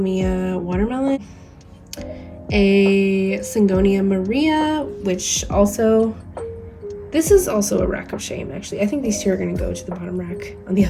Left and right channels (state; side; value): identical; both; correlation 1.00